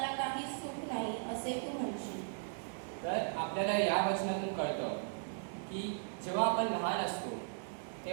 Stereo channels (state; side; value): silent; left; digital silence